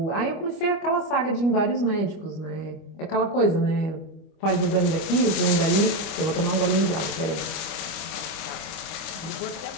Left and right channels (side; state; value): right; late; 25 ms